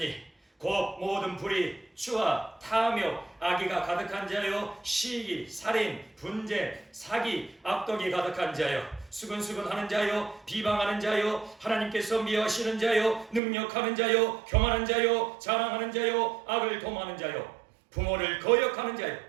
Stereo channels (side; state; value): left; drops out; at 13.4 s